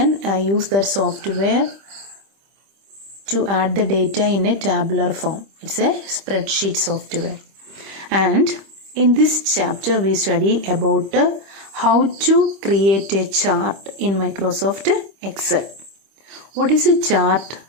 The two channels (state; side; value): late; left; 25 ms